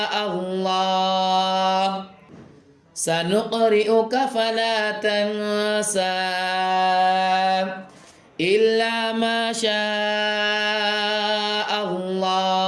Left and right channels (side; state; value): both; identical; correlation 1.00